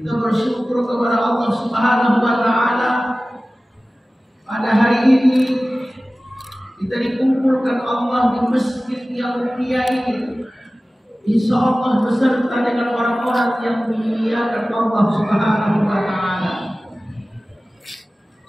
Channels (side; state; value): both; normal; correlation 0.97